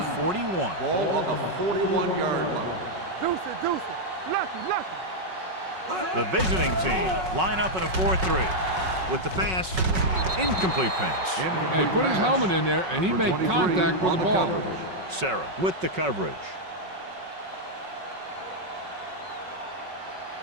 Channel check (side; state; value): left; late; 5.4 ms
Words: 41. Ball on the 41-yard line. Deuce it. Lucky. The visiting team line up in a 4-3 with the pass. Incomplete pass. Yeah, he put his helmet in there, and he made contact with the ball. Sarah with the coverage.